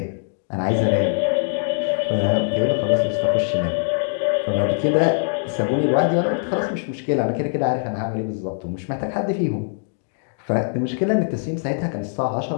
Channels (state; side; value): silent; right; digital silence